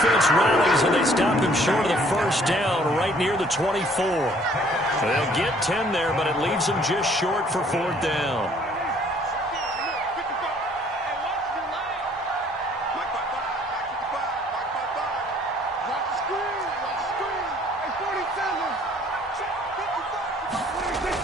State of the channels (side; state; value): both; normal; correlation 0.59